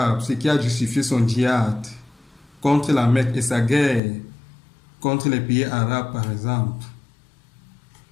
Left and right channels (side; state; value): right; drops out; at 4.0 s